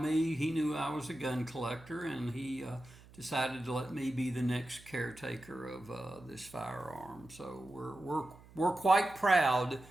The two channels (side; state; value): right; noise; hum, 22 dB below the sound